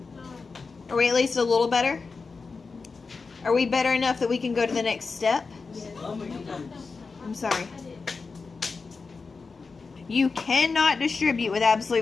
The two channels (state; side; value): quieter; right; 4.5 dB